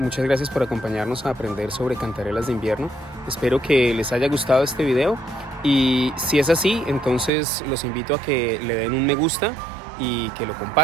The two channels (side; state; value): left; drops out; at 7.3 s